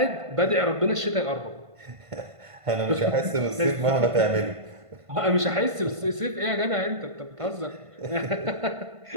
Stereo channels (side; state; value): left; late; 1.5 ms